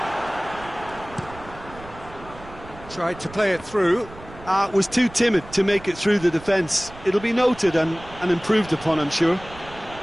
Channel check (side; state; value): right; noise; rumble, 18 dB below the sound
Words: Tried to play it through. Was too timid to make it through the defence. It'll be noted and improved upon, I'm sure.